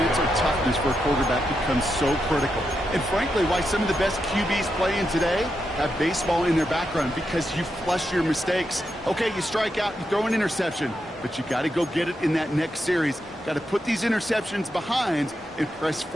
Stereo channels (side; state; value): both; normal; correlation 0.85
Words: toughness for a quarterback becomes so critical. And frankly, why some of the best QBs playing today have baseball in their background, because you flush your mistakes. Okay, you strike out, you throw an interception, but you got to go get it in that next series. Got to put these interceptions behind and press